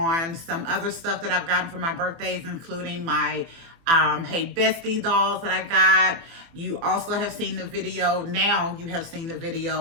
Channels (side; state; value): left; late; 24 ms